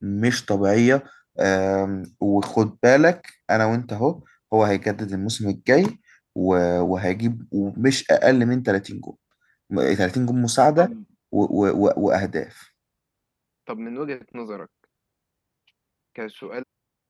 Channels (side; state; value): both; identical; correlation 1.00